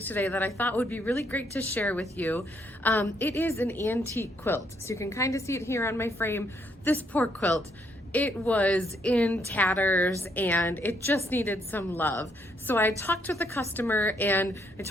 today that I thought would be really great to share with you. It is an antique quilt, so you can kind of see it here on my frame. This poor quilt, it was in tatters and it just needed some love. So I talked with the customer and I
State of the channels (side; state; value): both; normal; correlation 0.72